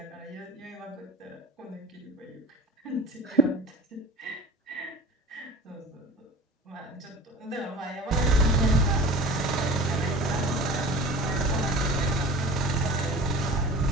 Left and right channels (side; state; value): both; normal; correlation 0.39